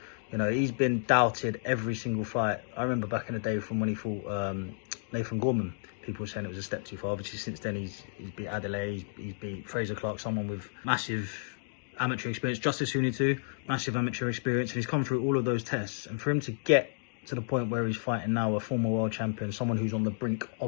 You know, he's been doubted every single fight. I remember back in the day from when he fought Nathan Gorman. People were saying it was a step too far. Obviously, since then, he's beat Adelaide, he's beat Fraser Clark, someone with massive amateur experience. Justice Huni too, massive amateur experience, and he's come through all of those tests. And for him to get to the point where he's fighting now a former world champion, someone who's on the brink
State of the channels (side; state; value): right; silent; digital silence